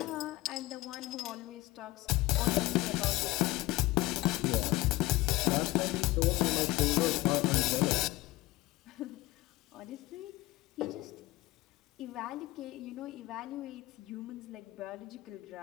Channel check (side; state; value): right; quieter; 18.8 dB